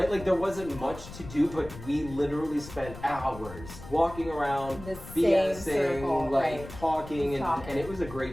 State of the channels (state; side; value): noise; left; rumble, 14 dB below the sound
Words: Like there wasn't much to do, but we literally spent hours walking around, the same circle, like talking, and it was a